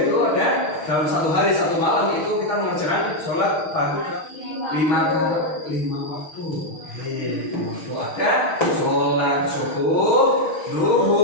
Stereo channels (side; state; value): right; late; 6.4 ms